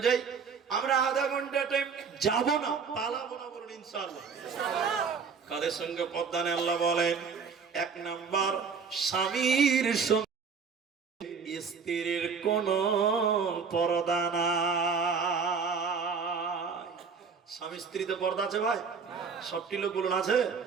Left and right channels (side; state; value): left; quieter; 5.7 dB